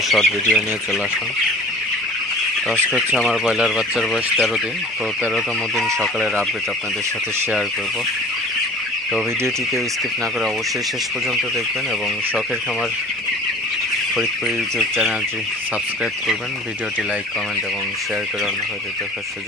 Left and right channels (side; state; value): both; normal; correlation 0.44